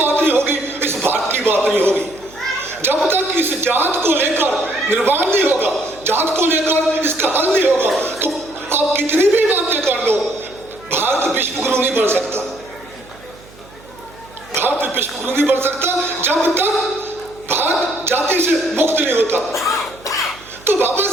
नहीं होगी, इस भारत की बात नहीं होगी। जब तक इस जात को लेकर निर्माण नहीं होगा, जात को लेकर इसका हल नहीं होगा, तो आप कितनी भी बातें कर लो, भारत विश्वगुरु नहीं बन सकता। भारत विश्वगुरु नहीं बन सकता जब तक भारत जाति से मुक्त नहीं होता। तो बाबा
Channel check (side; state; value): right; noise; hum, 23 dB below the sound